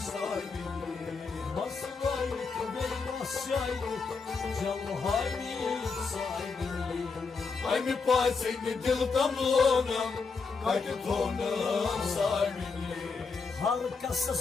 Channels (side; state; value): right; quieter; 4.8 dB